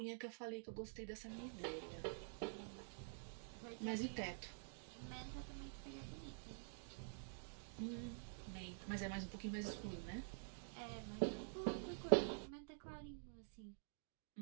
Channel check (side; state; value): left; silent; digital silence